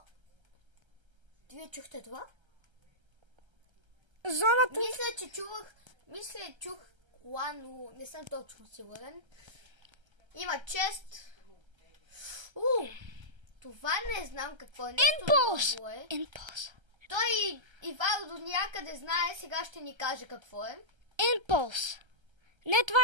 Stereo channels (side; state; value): left; late; 1.3 ms